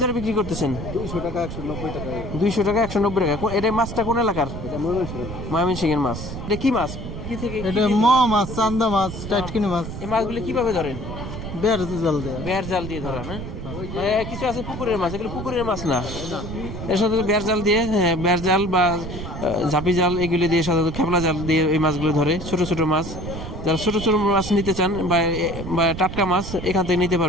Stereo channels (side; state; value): right; noise; rumble, 8 dB below the sound